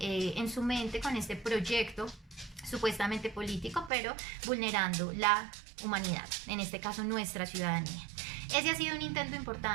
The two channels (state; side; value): drops out; left; at 3.9 s